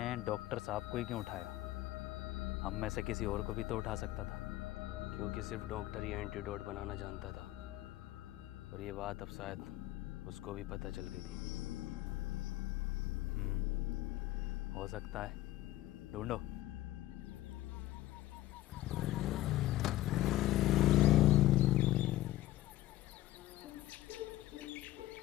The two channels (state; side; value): quieter; right; 15.9 dB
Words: डॉक्टर साहब को ही क्यों उठाया? हम में से किसी और को भी तो उठा सकता था। क्योंकि सिर्फ डॉक्टर ही एंटीडोट बनाना जानता था, और ये बात अब शायद उसको भी पता चल गई थी। हो सकता है, ढूंढो।